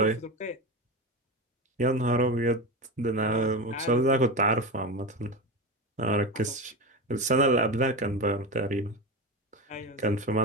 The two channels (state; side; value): normal; both; correlation 0.21